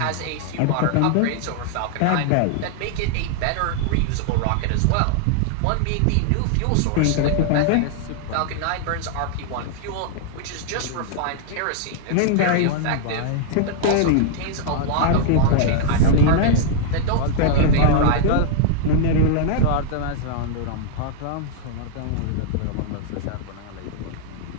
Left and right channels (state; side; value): different; both; correlation -0.01